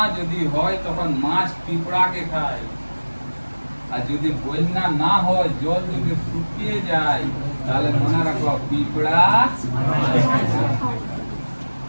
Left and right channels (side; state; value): both; inverted; correlation -1.00